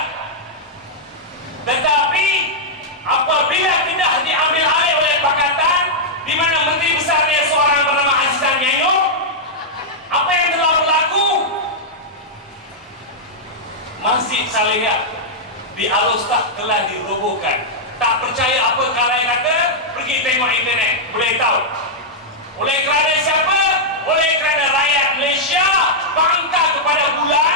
Tetapi apabila Kedah diambil alih oleh Pakatan, di mana Menteri Besarnya seorang bernama Azizan Nyayong, apa yang telah berlaku? Masjid Salihah di Alostak telah dirobohkan. Tak percaya apa kalai kata, pergi tengok internet, boleh tahu. Oleh kerana siapa? Oleh kerana rakyat Malaysia bangga kepada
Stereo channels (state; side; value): normal; both; correlation -0.07